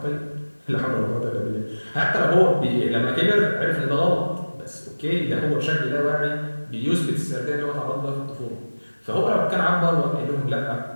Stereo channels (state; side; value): inverted; both; correlation -1.00